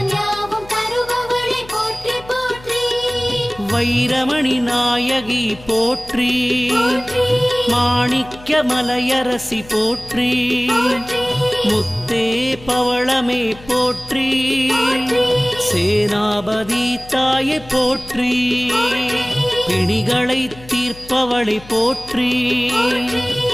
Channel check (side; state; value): left; noise; hum, 20 dB below the sound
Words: யாவும் தருபவளை போற்றி போற்றி, வைரமணி நாயகி போற்றி, மாணிக்க மலையரசி போற்றி, முத்தே பவளமே போற்றி, சேனாபதி தாயை போற்றி, பிணிகளை தீர்ப்பவளை போற்றி,